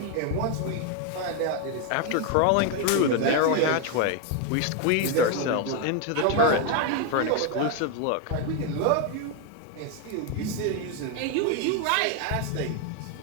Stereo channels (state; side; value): different; both; correlation 0.01